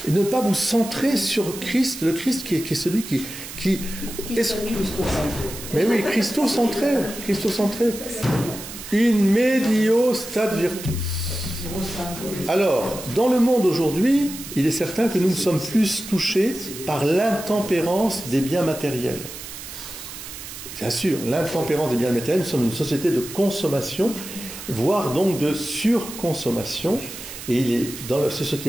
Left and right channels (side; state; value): right; noise; hiss, 11 dB below the sound